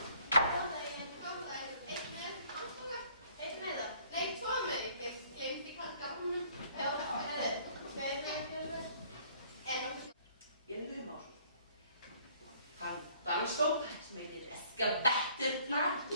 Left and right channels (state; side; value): inverted; both; correlation -0.59